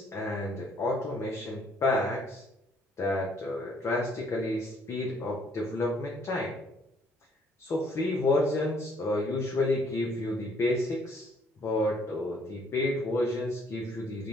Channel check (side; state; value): both; normal; correlation 0.65